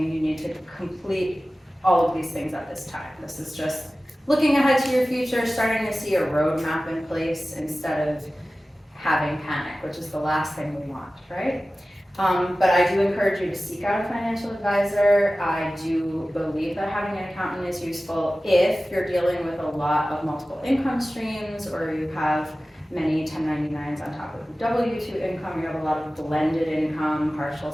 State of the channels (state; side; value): normal; both; correlation 0.96